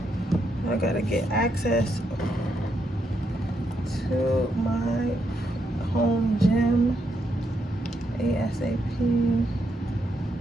I gotta get access to my home gym ASAP.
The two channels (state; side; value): normal; both; correlation 0.79